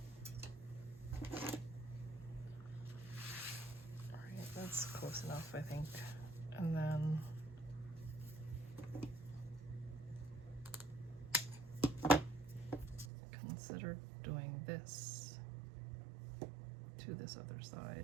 That's close enough, I think. And then consider doing this to this other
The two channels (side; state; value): left; drops out; at 13.1 s